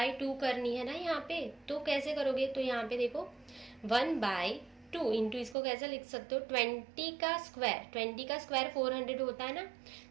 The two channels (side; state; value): left; drops out; at 5.6 s